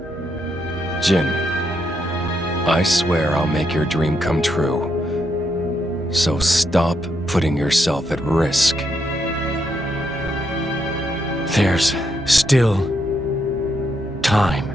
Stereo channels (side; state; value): both; normal; correlation 0.79